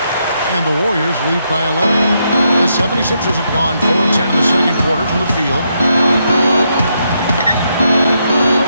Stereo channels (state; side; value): inverted; both; correlation -0.79